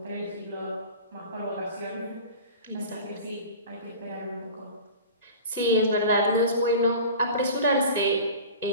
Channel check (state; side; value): inverted; both; correlation -0.37